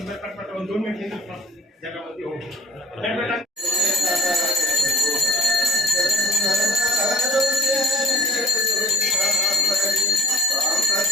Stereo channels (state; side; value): normal; both; correlation 0.52